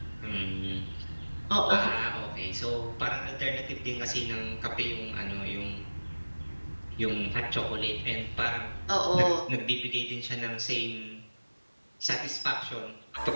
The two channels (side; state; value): both; inverted; correlation -1.00